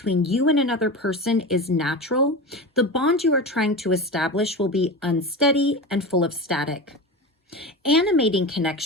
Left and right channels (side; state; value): both; normal; correlation 0.26